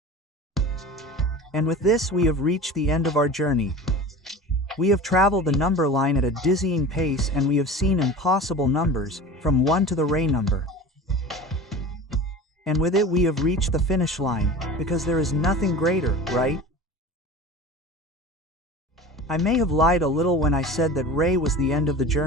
And with this we have reached the end of our journey. We have traveled the number line at a dizzying pace and we have seen impossible numbers, from 1 to the ray number. And with it we have reached the finish line, because there is nothing greater, right? I may have lied a little when I said that ray was the end of the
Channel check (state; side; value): normal; both; correlation 0.35